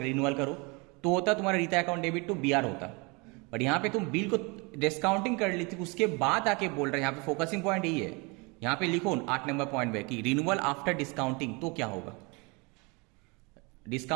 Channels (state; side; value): quieter; left; 28.9 dB